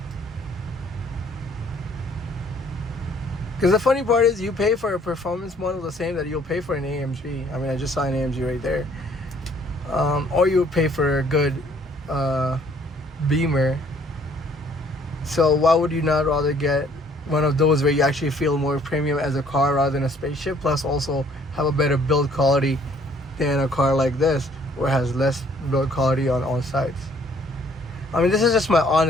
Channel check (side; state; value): both; normal; correlation 0.61